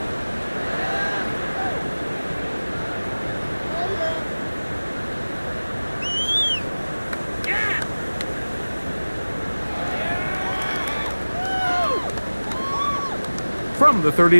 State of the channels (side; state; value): both; inverted; correlation -1.00